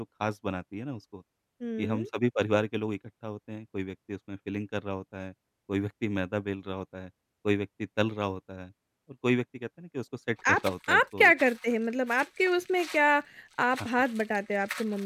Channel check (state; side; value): identical; both; correlation 1.00